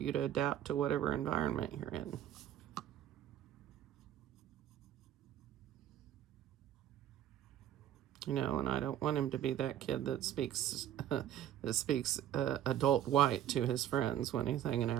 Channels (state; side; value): quieter; left; 11.2 dB